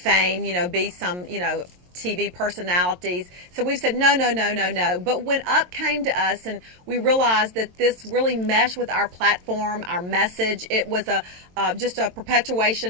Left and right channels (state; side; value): late; left; 22 ms